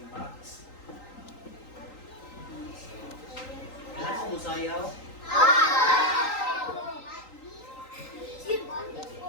Max. Kailan mo musayaw?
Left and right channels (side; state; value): right; late; 3.8 ms